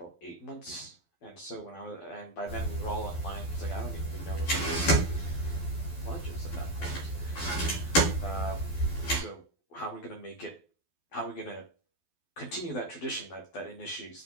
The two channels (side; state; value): right; late; 12 ms